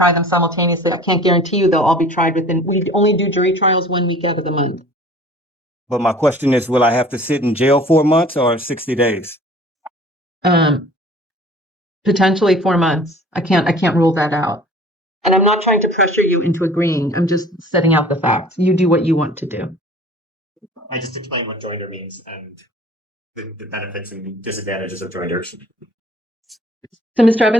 them simultaneously, I can't guarantee you they'll all be tried we only do jury trials 1 week out of the month. But my question is, will I have to sit in jail 4 months or 60 days? Potentially 4 months. I can't rule that out. And I'm not trying to pressure you into agreeing. I'm just setting out the facts. You do what you want to do. I just explained what joinder means and the benefits and disadvantages of joinders. So, Mr.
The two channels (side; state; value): both; normal; correlation 0.48